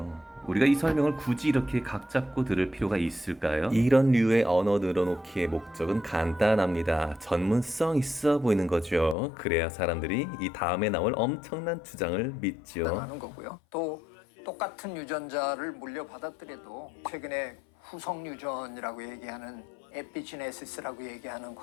우리가 이 설명을 굳이 이렇게 각 잡고 들을 필요가 있을까요? 이런 류의 언어 늘어놓기의 목적은 간단합니다. 전문성 있어 보이는 거죠. 그래야 사람들이 이 다음에 나올 엄청난 주장을 믿죠. 하는 거고요. 또 똑같은 유전자를 물려받았더라도 최근에 후속 유전이라고 얘기하는 에피지네시스라고 얘기하는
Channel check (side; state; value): right; drops out; at 9.2 s